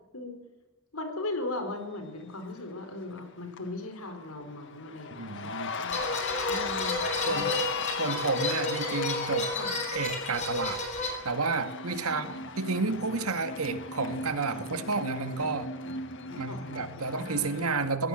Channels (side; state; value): both; normal; correlation -0.11